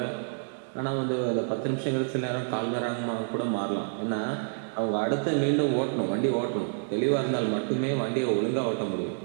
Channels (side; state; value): left; silent; digital silence